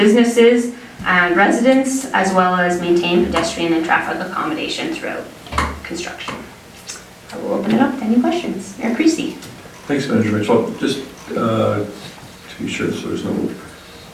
and residents, as well as maintain pedestrian and traffic accommodation throughout construction. I will open it up to any questions. Mayor Creasy. Thanks, Manager Mitchell. Just to be sure so there's no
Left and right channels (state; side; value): identical; both; correlation 1.00